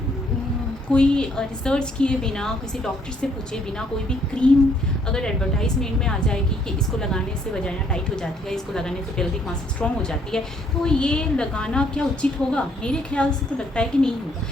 कोई रिसर्च किए बिना, किसी डॉक्टर से पूछे बिना, कोई भी क्रीम अगर एडवर्टाइजमेंट में आ जाएगी कि इसको लगाने से वजाइना टाइट हो जाती है, इसको लगाने से पेल्विक मसल स्ट्रॉन्ग हो जाती है, तो ये लगाना क्या उचित होगा? मेरे ख्याल से तो लगता है कि नहीं होगा,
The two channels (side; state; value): both; normal; correlation 0.67